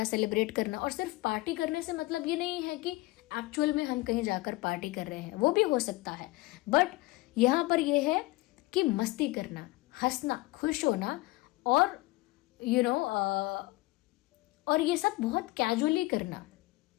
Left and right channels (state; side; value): quieter; right; 20.9 dB